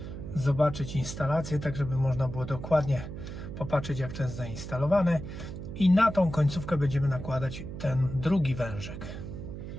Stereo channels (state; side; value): noise; right; hum, 9 dB below the sound